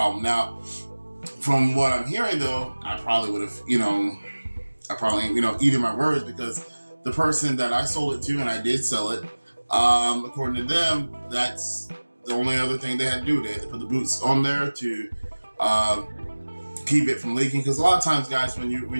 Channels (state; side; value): inverted; both; correlation -1.00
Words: Now, from what I'm hearing, though, I probably would have, eaten my words, because the person that I sold it to, and I did sell it, according to them, that's the only other thing they had to do. They had to put the boots on there to keep it from leaking. Because a lot of times, guys, when